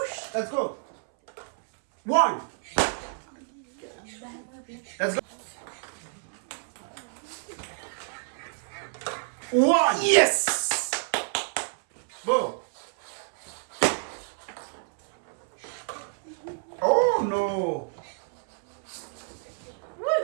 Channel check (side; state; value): left; silent; 59 dB below the other